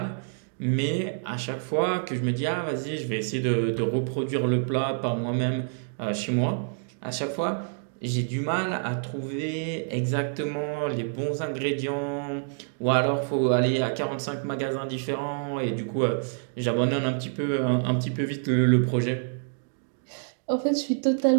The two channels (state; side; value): silent; left; 60 dB below the other